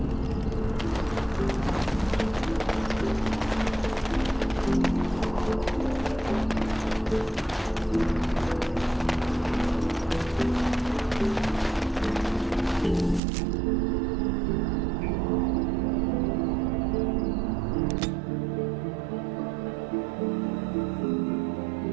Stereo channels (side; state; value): left; drops out; at 13.2 s